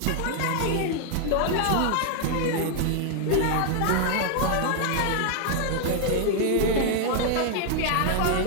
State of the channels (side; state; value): both; different; correlation 0.00